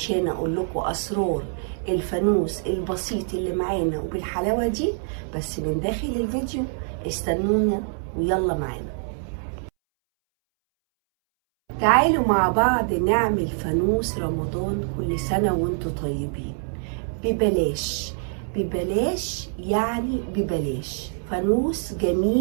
اقول لكم اسرار الفانوس البسيط اللي معانا وبالحلاوة دي بس من داخل الفيديو. استنونا ويلا معانا. تعالوا مع بعض نعمل فانوس رمضان كل سنة وانتوا طيبين. ببلاش ببلاش يعني ببلاش. فانوس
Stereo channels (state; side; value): silent; left; 62 dB below the other